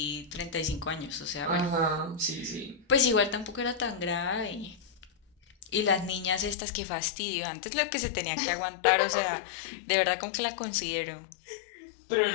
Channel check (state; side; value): drops out; right; at 6.6 s